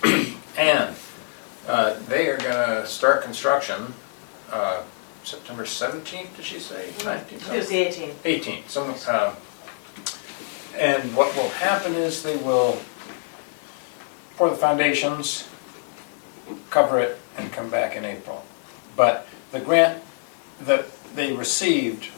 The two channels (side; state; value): right; silent; 62 dB below the other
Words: and they are gonna start construction September 17th, did she say? 19th? It was the 18th. 18th. And what will happen is they will pour the foundations, cover it, and come back in April. But the grant that they received